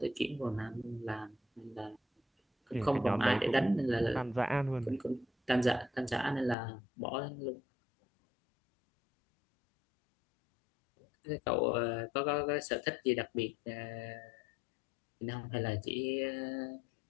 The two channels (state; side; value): drops out; right; at 6.6 s